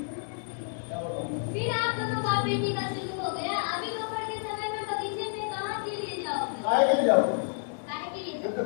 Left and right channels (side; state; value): right; silent; digital silence